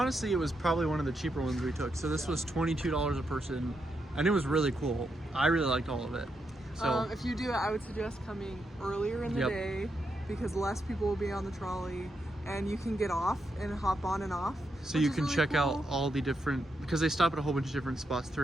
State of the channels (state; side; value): normal; both; correlation 0.82